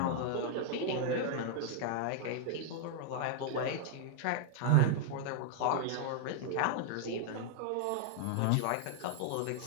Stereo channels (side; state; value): both; different; correlation 0.00